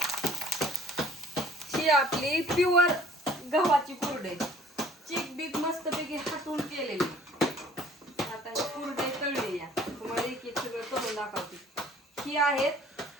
ही आपली प्युअर गव्हाची कुरडई, चिक बीक मस्तपैकी हाटून केलेली. आता ही कुरडई तळली या तुम्हाला एक एक सगळं करून दाखवते. ही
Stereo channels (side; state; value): both; normal; correlation 0.54